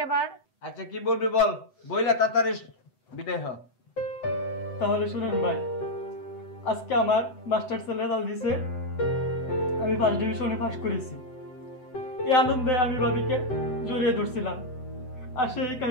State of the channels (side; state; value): right; late; 7.9 ms